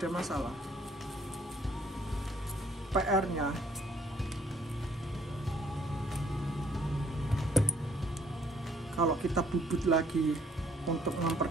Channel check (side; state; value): both; normal; correlation 0.63